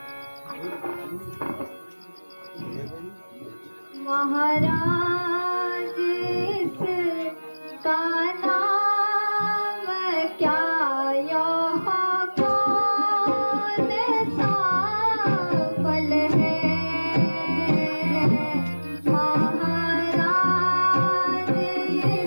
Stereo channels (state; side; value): inverted; both; correlation -1.00